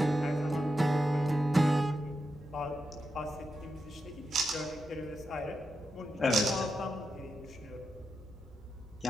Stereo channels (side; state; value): both; normal; correlation 0.87